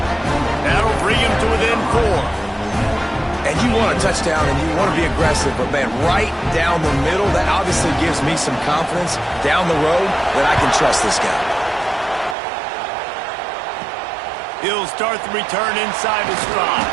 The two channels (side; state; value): left; drops out; at 12.4 s